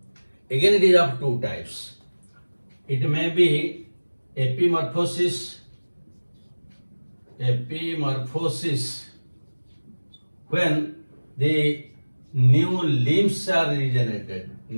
Again, it is of two types. It may be epimorphosis, when the new limbs are regenerated.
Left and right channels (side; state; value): both; inverted; correlation -1.00